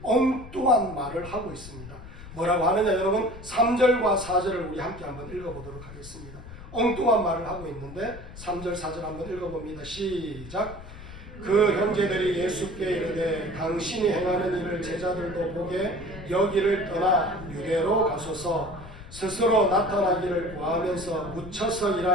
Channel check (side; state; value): left; noise; rumble, 14 dB below the sound